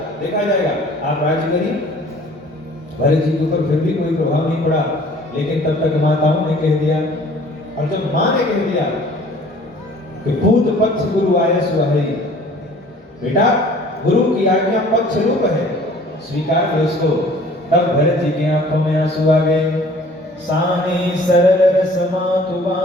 देखा जाएगा, आप राज्य करिए। भरत जी के ऊपर फिर भी कोई प्रभाव नहीं पड़ा, लेकिन तब तक माताओं ने कह दिया, और जब मां ने कह दिया कि पूत पक्ष गुरु आयस वही, बेटा गुरु की आज्ञा पक्ष रूप है, स्वीकार करो इसको। तब भरत जी की आंखों में आंसू आ गए। सानी सरल रस मातु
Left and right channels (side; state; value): both; normal; correlation 0.51